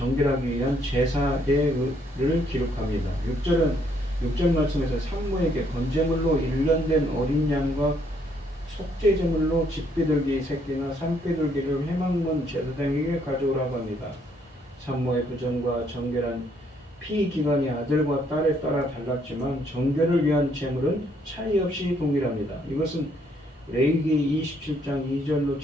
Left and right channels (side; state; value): both; normal; correlation 0.69